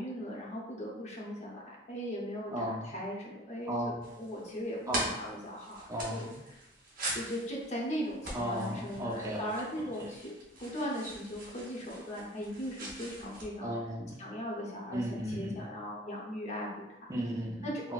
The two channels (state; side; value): normal; both; correlation 0.45